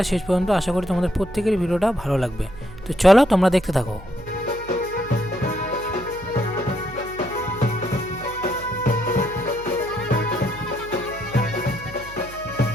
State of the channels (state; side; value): noise; right; hum, 17 dB below the sound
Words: শেষ পর্যন্ত, আশা করি তোমাদের প্রত্যেকেরই ভিডিওটা ভালো লাগবে। তো চলো তোমরা দেখতে থাকো।